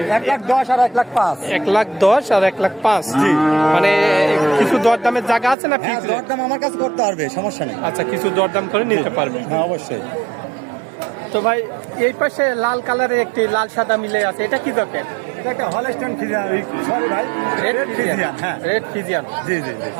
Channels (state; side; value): drops out; left; at 5.6 s